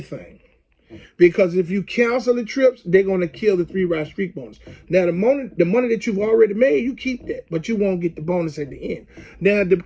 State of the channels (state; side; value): identical; both; correlation 1.00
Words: Because if you cancel the trips, they're going to kill the 3-ride streak bonus. Now, the money that you've already made, you keep that. But you won't get the bonus at the end. Now, the